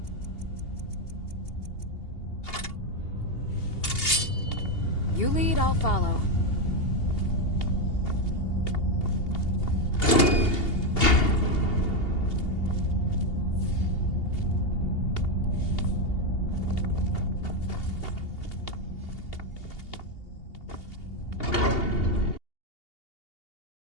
You lead, I'll follow.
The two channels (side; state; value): right; late; 2.8 ms